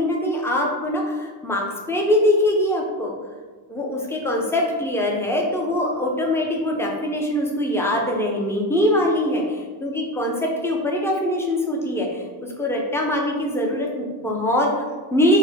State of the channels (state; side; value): normal; both; correlation 0.26